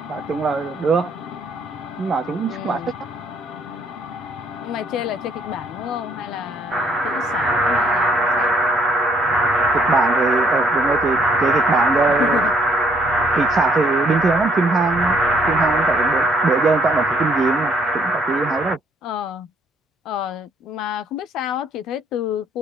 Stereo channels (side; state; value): both; normal; correlation 0.65